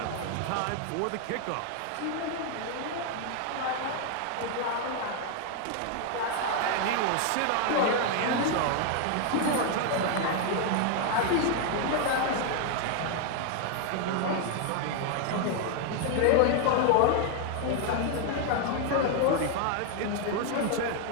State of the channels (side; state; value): both; different; correlation 0.00